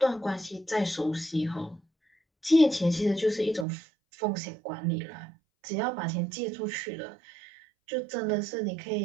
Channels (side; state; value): left; drops out; at 3.7 s